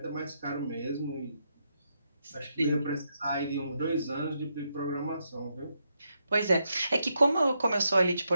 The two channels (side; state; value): both; inverted; correlation -0.81